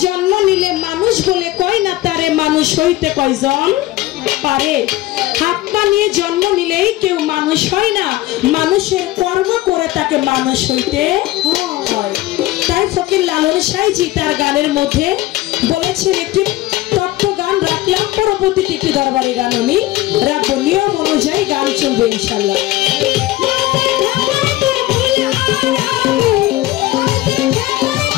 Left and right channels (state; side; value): quieter; right; 16.9 dB